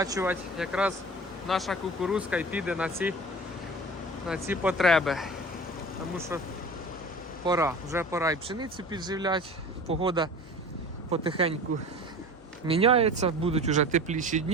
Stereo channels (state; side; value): normal; both; correlation 0.38